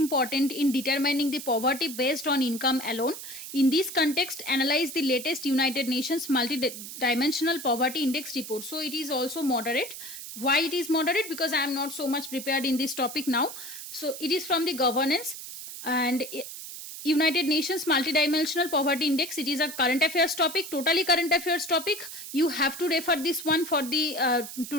in determining the poverty based on income alone. In this context, analyze the latest United Nations multi-dimensional poverty index report. So it is also moderate. Why it is moderate? Because I am not so much prepared in this topic now. So it is from the governance and United Nations Multidimensional Poverty Index. It is a current affairs topic, totally current affairs topic. You have to refer this one for the to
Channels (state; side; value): noise; right; hiss, 10 dB below the sound